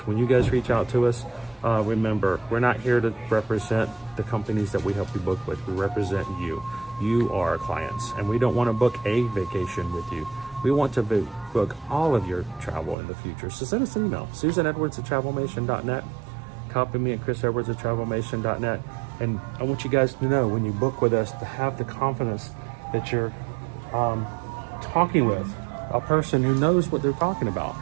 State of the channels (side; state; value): left; drops out; at 13.0 s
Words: When you guys reach out to us, remember, we're not here to represent the companies that we help you book with. We represent you. You are our clients, and we don't want to book a vacation with you. We want to book all of your travel in the future. So send us an email, SusanEdwards@TravelMation.net. Copy me at ChrisEdwards@TravelMation.net. And I want you guys to know, when you book with us, to have the confidence that you're talking with a person who knows what they're talking about.